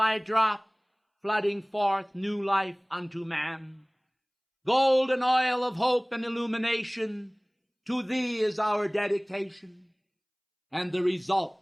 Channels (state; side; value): identical; both; correlation 1.00